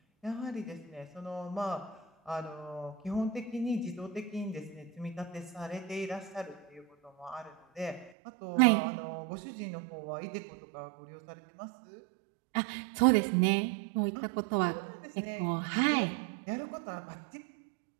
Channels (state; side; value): drops out; left; at 8.1 s